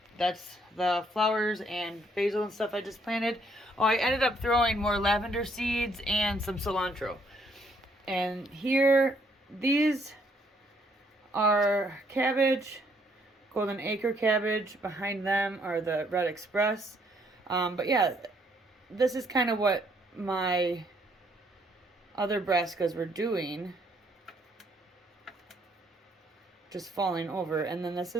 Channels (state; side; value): normal; both; correlation 0.68